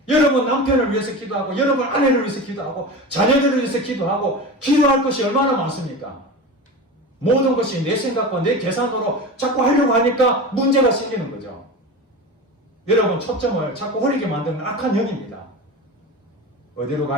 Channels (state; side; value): normal; both; correlation 0.29